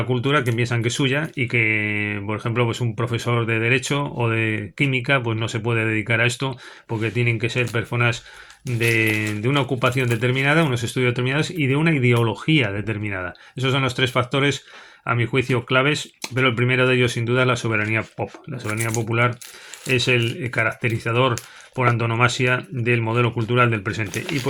cultura, que piensan que es suya, y que, por ejemplo, pues un profesor de derecho o de química pues no se puede dedicar a esto porque tienen que ser personas de una ocupación determinada, unos estudios determinados y de una ideología determinada. Esos son los tres factores, a mi juicio, claves, pero el primero de ellos sin duda es la soberanía pop. La soberanía popular es el caracterizador por antonomasia del modelo cultural del presente. Y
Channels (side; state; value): both; identical; correlation 1.00